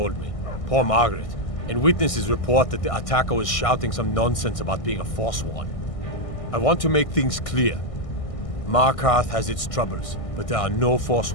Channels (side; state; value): right; late; 1.6 ms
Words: me. Poor Margaret. And witnesses report that the attacker was shouting some nonsense about being a Forsworn. I want to make things clear. Markarth has its troubles, but there are no